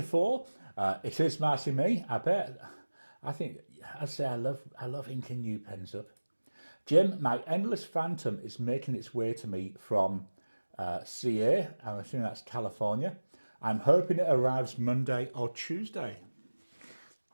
4, it is Marcy Me, I bet. I think, I'd say I love inking new pens up. Jim, my Endless Phantom is making its way to me from CA, I'm assuming that's California. I'm hoping it arrives Monday or Tuesday.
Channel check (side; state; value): both; inverted; correlation -1.00